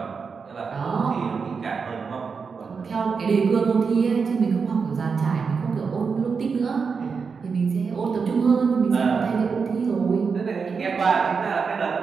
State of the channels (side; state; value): left; quieter; 5.4 dB